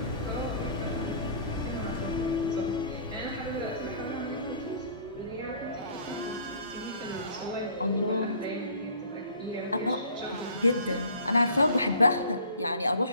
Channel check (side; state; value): both; inverted; correlation -0.49